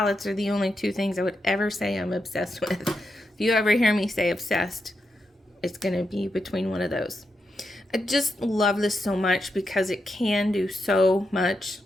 are the only two things I would ever say I'm obsessed with. If you ever hear me say obsessed, it's going to be between one of those. I just love this so much because it can do so much.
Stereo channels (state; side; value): normal; both; correlation 0.85